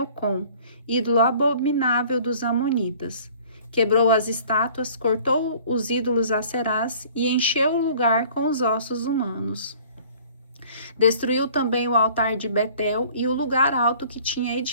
ídolo abominável dos Amonitas. Quebrou as estátuas, cortou os ídolos aserás e encheu o lugar com os ossos humanos. Destruiu também o altar de Betel e o lugar alto que tinha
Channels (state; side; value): inverted; both; correlation -0.51